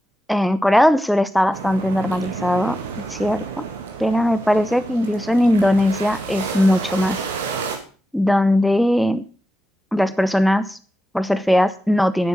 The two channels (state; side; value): normal; both; correlation 0.91